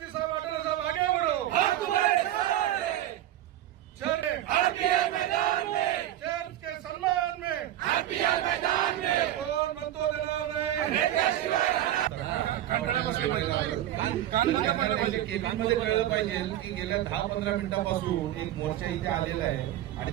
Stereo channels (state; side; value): quieter; left; 12.9 dB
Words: साहेब अटल साहेब आगे बढ़ो, चर्च के सम्मान में कौन बनतो देणार नाही? केबीमध्ये कळलं पाहिजे की गेल्या 10-15 मिनिटांपासून एक मोर्चा इथे आलेला आहे आणि